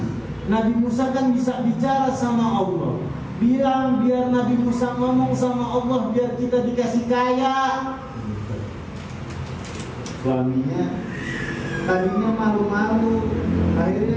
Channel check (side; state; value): both; identical; correlation 1.00